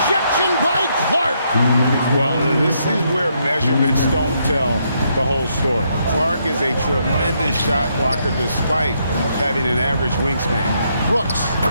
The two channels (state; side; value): inverted; both; correlation -0.75